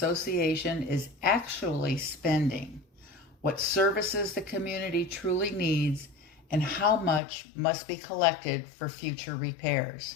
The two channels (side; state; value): right; drops out; at 7.2 s